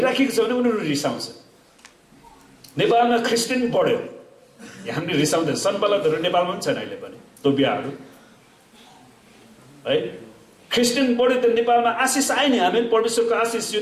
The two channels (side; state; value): both; identical; correlation 1.00